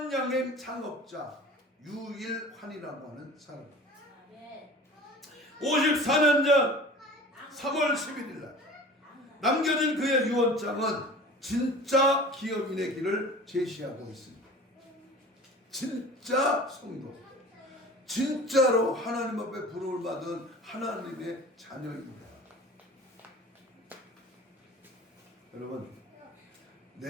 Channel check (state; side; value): normal; both; correlation 0.40